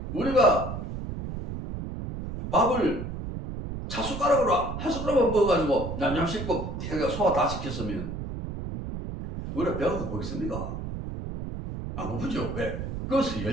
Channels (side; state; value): right; noise; rumble, 6 dB below the sound